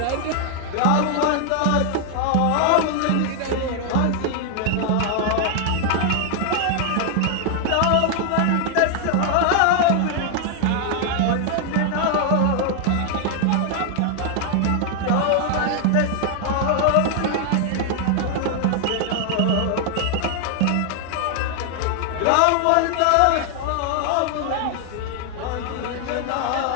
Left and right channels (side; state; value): both; different; correlation 0.00